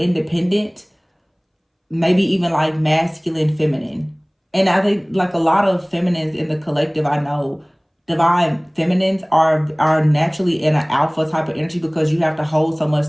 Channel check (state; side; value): identical; both; correlation 1.00